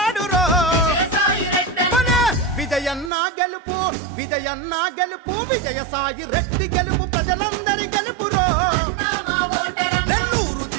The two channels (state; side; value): drops out; left; at 3.1 s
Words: విజయన్న గెలుపు విజయన్న గెలుపు విజయసాయి రెడ్డి గెలుపు ప్రజలందరి గెలుపురో నెల్లూరు